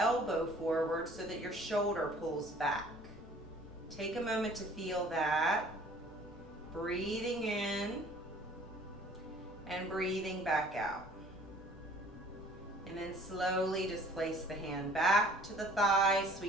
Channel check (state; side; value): normal; both; correlation 0.53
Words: forward so that your shoulder pulls back. Take a moment to feel that. Breathing in and breathing back out. And then slowly just place the hand back to the thigh,